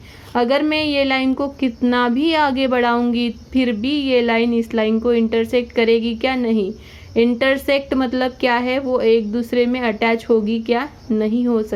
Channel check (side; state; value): both; identical; correlation 1.00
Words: अगर मैं ये लाइन को कितना भी आगे बढ़ाऊंगी फिर भी ये लाइन इस लाइन को इंटरसेक्ट करेगी क्या, नहीं। इंटरसेक्ट मतलब क्या है, वो एक दूसरे में अटैच होगी क्या, नहीं हो